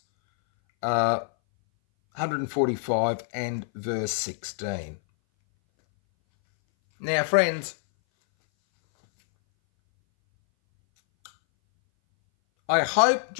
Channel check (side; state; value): right; silent; 60 dB below the other